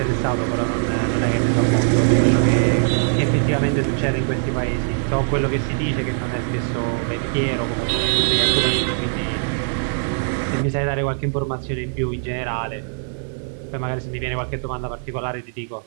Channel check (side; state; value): left; silent; digital silence